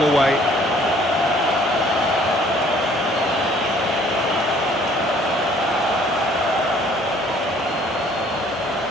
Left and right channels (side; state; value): both; normal; correlation 0.58